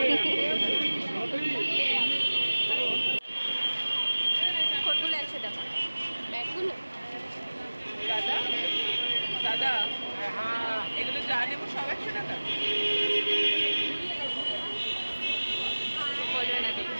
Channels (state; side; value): inverted; both; correlation -1.00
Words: কোনগুলো 100 টাকা? ব্যাগগুলো দাদা দাদা, এগুলো যা নেবো সব 100 টাকা বলবে না দেখি।